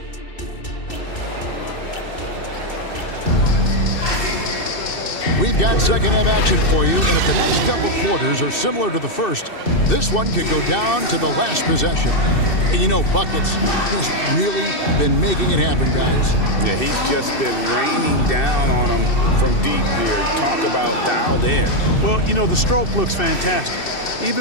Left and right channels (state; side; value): late; right; 2.6 ms